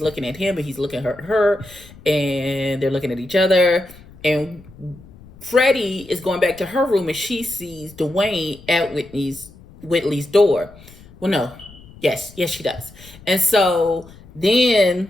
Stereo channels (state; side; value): noise; left; rumble, 22 dB below the sound